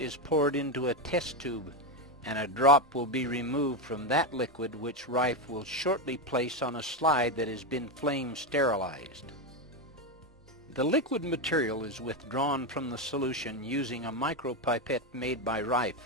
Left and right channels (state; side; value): normal; both; correlation 0.10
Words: poured into a test tube, and a drop will be removed from that liquid, which Raiff will shortly place on a slide that has been flame sterilized. The liquid material is withdrawn from the solution using a micropipette made by Raiff,